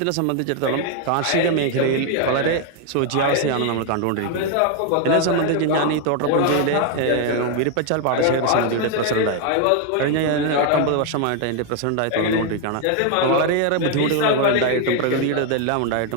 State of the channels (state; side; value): different; both; correlation 0.00